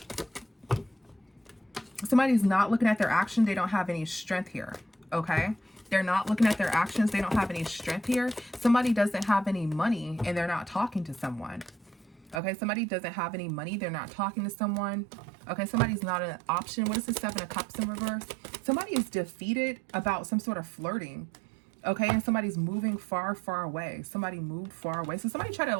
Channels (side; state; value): left; drops out; at 12.4 s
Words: Somebody's not looking at their action. They don't have any strength here. Okay, they're not looking at their actions. They don't have any strength here. Somebody doesn't have any money and they're not talking to someone. Okay, somebody doesn't have any money. They're not talking to someone. Okay, somebody's not an option. What is the Seven of Cups in reverse? Somebody is defeated about some sort of flirting. Okay, and somebody's moving far, far away. Somebody moved far away. So somebody tried to